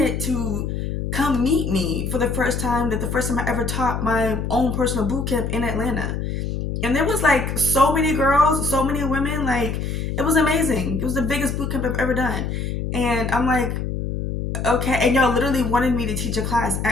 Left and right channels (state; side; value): noise; left; hum, 3 dB below the sound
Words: to come meet me for the first time I ever taught my own personal boot camp in Atlanta. And there was like so many girls, so many women, like it was amazing. It was the biggest boot camp I've ever done. And I'm like, okay, and y'all literally wanted me to teach a class